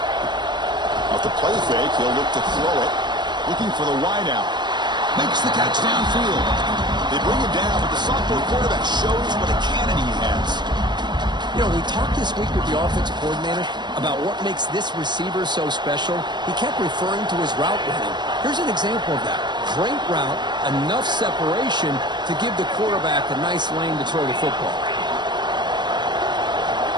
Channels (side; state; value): left; late; 0.21 ms